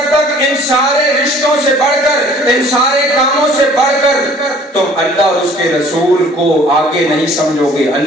تک ان سارے رشتوں سے بڑھ کر, ان سارے کاموں سے بڑھ کر تم اللہ اور اس کے رسول کو آگے نہیں سمجھو گے,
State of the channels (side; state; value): both; normal; correlation 0.53